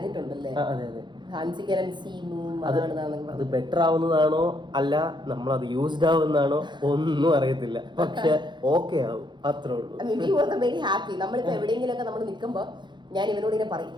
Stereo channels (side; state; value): left; late; 0.22 ms